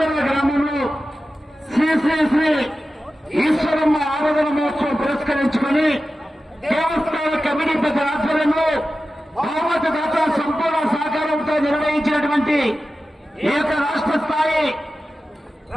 గ్రామంలో శ్రీ శ్రీ శ్రీ ఈశ్వరమ్మ ఆరాధన మహోత్సవం పురస్కరించుకుని దేవస్థాన కమిటీ పెద్ద ఆధ్వర్యంలో బహుమతి దాత సంపూర్ణ సహకారంతో నిర్వహించినటువంటి ఏక రాష్ట్ర స్థాయి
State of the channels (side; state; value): both; normal; correlation 0.94